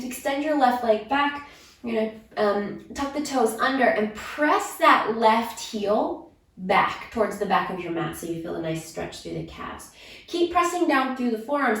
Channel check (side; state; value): both; identical; correlation 1.00